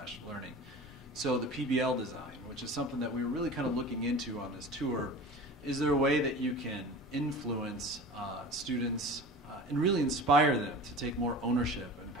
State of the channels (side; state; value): both; normal; correlation 0.36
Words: learning. So the PBL design, which is something that we were really kind of looking into on this tour, is there a way that you can influence students and really inspire them to take more ownership and